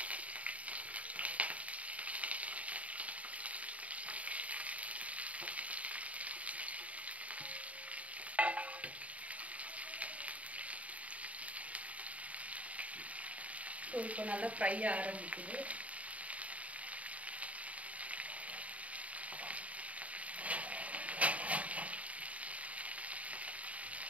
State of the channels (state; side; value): late; left; 0.068 ms